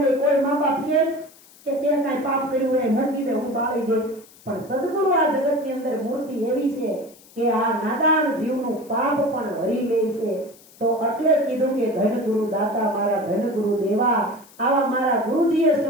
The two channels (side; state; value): left; noise; hiss, 25 dB below the sound